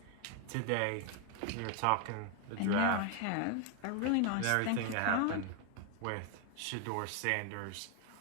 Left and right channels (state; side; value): different; both; correlation 0.01